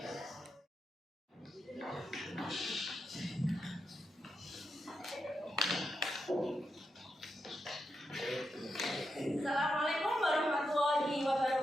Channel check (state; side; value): normal; both; correlation 0.86